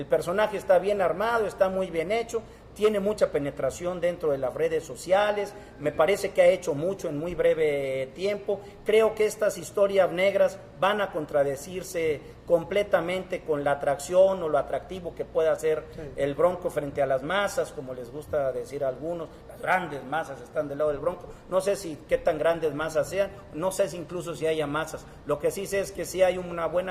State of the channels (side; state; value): both; identical; correlation 1.00